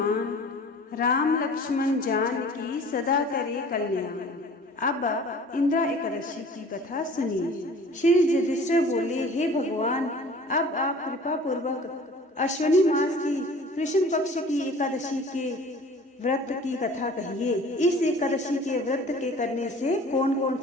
राम लक्ष्मण जान की सदा करे कल्याण। अब इंद्रा एकादशी की कथा सुनिए। श्री युधिष्ठिर बोले, हे भगवान, अब आप कृपा पूर्वक अश्विनी मास की कृष्ण पक्ष की एकादशी के व्रत की कथा कहिए। इस एकादशी के व्रत के करने से कौन कौन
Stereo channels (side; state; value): both; normal; correlation 0.46